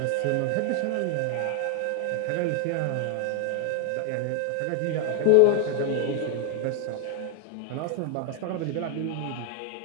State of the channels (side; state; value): both; different; correlation 0.00